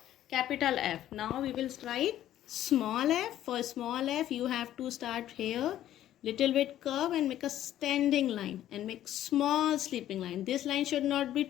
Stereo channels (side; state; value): right; quieter; 12.4 dB